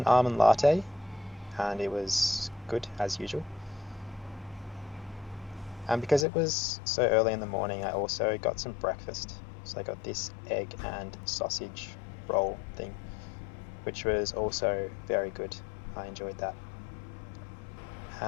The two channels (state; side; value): drops out; right; at 6.2 s